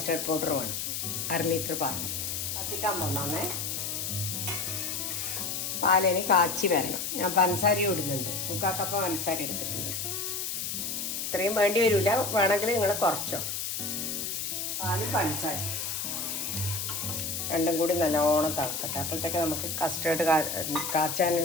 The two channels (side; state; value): left; noise; hiss, 3 dB below the sound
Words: പൗഡർ വേണം. 1/2 ലിറ്റർ പാൽ കത്തിക്കാൻ പോകണേ. പാലിന് കാച്ചി വരണം. ഞാൻ പഞ്ചസാര ഇടുന്നുണ്ട്, 3/4 കപ്പ് പഞ്ചസാര എടുത്തിട്ടുണ്ട്. ഇത്രയും വേണ്ടി വരില്ല, വേണമെങ്കിൽ നിങ്ങൾ കുറച്ചോ. പാലും പഞ്ചസാര രണ്ടും കൂടി നല്ലോണം തിളക്കട്ടെ. അപ്പോഴത്തേക്ക് നമുക്ക് കസ്റ്റേർഡ്